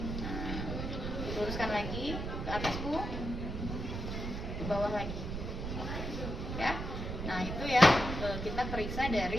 Nah, luruskan lagi ke atas, Bu. Ke bawah lagi. Ya. Nah, itu ya kita periksa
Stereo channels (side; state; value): right; noise; rumble, 4 dB below the sound